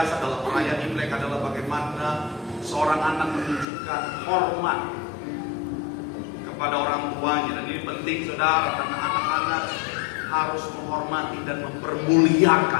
dalam perayaan Imlek adalah bagaimana seorang anak menunjukkan hormat kepada orang tuanya. Dan ini penting, saudara, karena anak-anak harus menghormati dan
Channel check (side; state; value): right; drops out; at 3.7 s